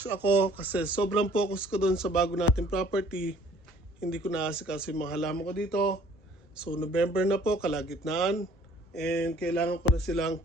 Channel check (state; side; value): normal; both; correlation 0.56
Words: ako kasi sobrang focus ko doon sa bago nating property. Hindi ko naasikaso yung mga halaman ko dito. So November na po, kalagitnaan. And kailangan ko na silang